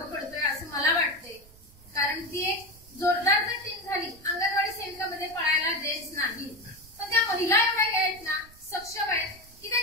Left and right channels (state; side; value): noise; right; rumble, 23 dB below the sound